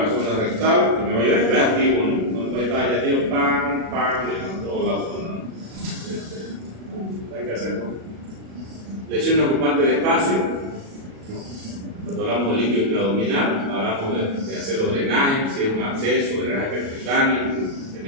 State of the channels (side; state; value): left; late; 36 ms